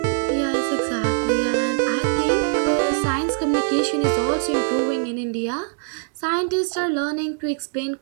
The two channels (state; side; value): silent; left; 57 dB below the other